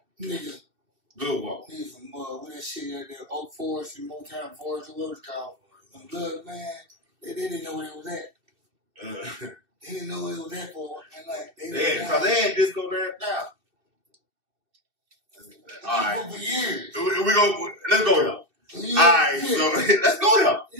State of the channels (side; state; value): left; late; 2.6 ms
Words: Nigga. Good walk. Nigga from what that shit out there, Oak Forest and Motown Forest, or whatever it's called. Blood, man, they didn't know where it was at. They didn't know where it was at for. And like, they had disco there now. All right. For years. We go. Let's go here. Yeah, Alright, yeah. so let's go here.